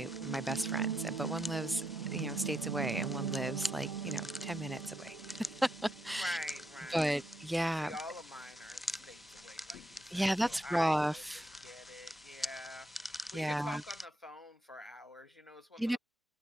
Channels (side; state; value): both; normal; correlation 0.80